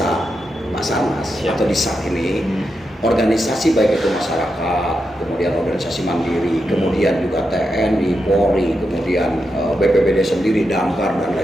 Basarnas atau di SAR ini, organisasi baik itu masyarakat, kemudian organisasi mandiri, kemudian juga TNI, Polri, kemudian BPBD sendiri, Damkar dan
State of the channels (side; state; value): both; normal; correlation 0.86